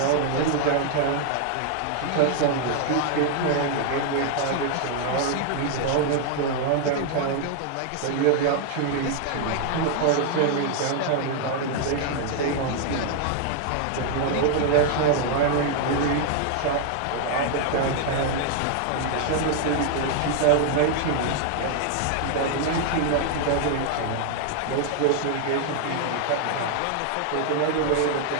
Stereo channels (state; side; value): different; both; correlation 0.00